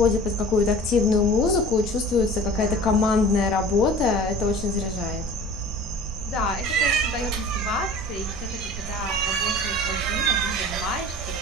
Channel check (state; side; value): noise; right; rumble, 12 dB below the sound